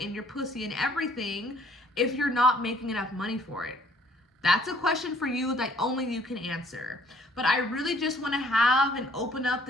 your pussy and everything if you're not making enough money for it? That's a question for you that only you can answer. But I really just want to have and open up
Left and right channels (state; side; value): normal; both; correlation 0.60